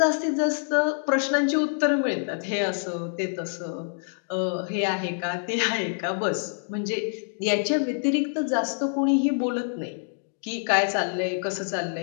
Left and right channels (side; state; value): right; silent; 61 dB below the other